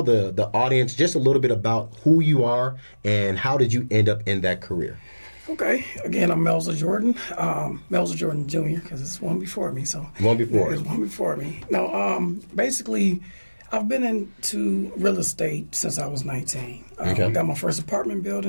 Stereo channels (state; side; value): inverted; both; correlation -1.00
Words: the audience just a little bit about who you are and how did you end up in that career? Okay. Again, I'm Melza Jordan. Melza Jordan Jr. because it's one before me. So one before. It's one before me. Now, basically, I've been into real estate since I was 19. Okay. Got my first apartment